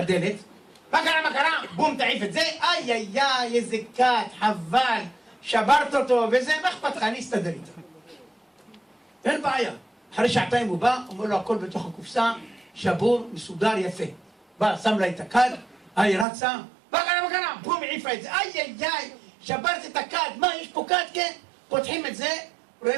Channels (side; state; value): left; drops out; at 16.2 s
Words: מה קרה? בום, תעיף את זה, איי, איזה כת, חבל, שברת אותו, וזה, מה אכפת לך? אני אסתדר איתה. אין בעיה. אחרי שעתיים הוא בא, אומר לו הכל בתוך הקופסה, שבור, מסודר, יפה. בא, שם לה את הכד, היא רצה, מה קרה? בום, העיפה את זה, איי, שברת את הכד, מה, יש פה כד, כן? פותחים את זה,